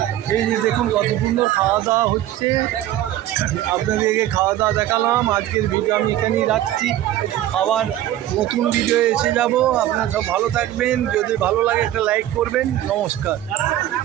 এই যে দেখুন কত সুন্দর খাওয়া দাওয়া হচ্ছে। আপনাদেরকে খাওয়া দাওয়া দেখালাম। আজকের ভিডিও আমি এখানেই রাখছি, আবার নতুন ভিডিও এসে যাব। আপনারা সব ভালো থাকবেন, যদি ভালো লাগে একটা লাইক করবেন। নমস্কার।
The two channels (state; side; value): quieter; left; 13.2 dB